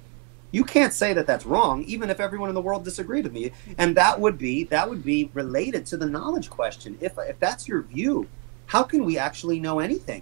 You can't say that that's wrong, even if everyone in the world disagreed with me. And that would be related to the knowledge question. If that's your view, how can we actually know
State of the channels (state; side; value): quieter; left; 35.3 dB